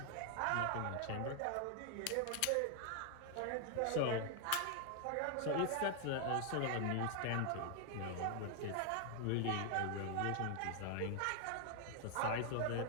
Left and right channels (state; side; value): different; both; correlation 0.00